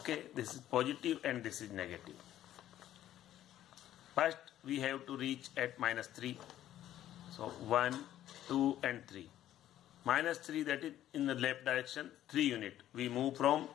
this is positive and this is negative. First we have to reach at minus 3. So 1, 2 and 3. Minus 3, that is in the left direction, 3 unit. We move from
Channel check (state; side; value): quieter; right; 12.5 dB